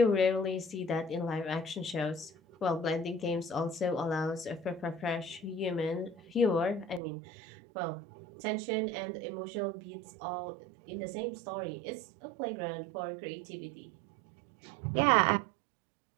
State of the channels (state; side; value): drops out; left; at 7.0 s